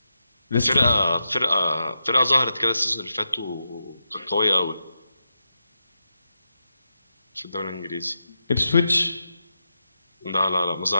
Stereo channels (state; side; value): inverted; both; correlation -0.87